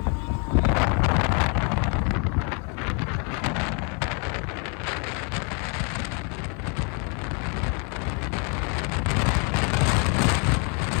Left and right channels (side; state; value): right; quieter; 36.5 dB